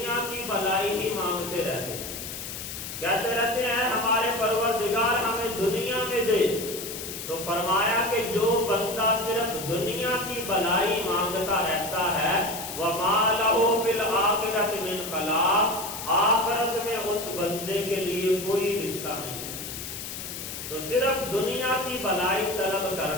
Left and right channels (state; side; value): noise; left; hiss, 8 dB below the sound